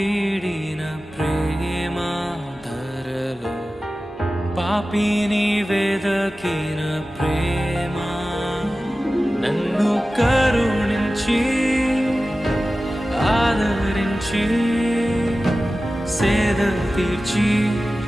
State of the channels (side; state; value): both; normal; correlation 0.95